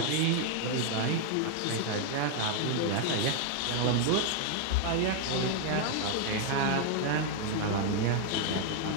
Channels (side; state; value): both; different; correlation 0.00